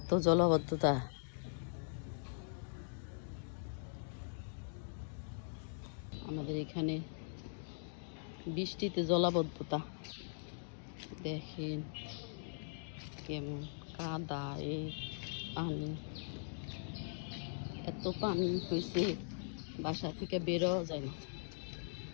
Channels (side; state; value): right; silent; digital silence